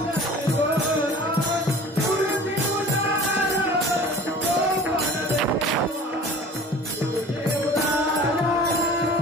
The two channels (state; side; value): normal; both; correlation 0.43